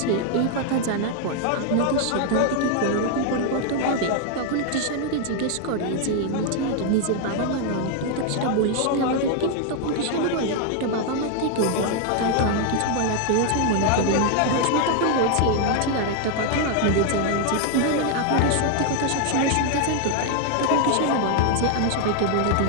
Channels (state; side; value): different; both; correlation 0.00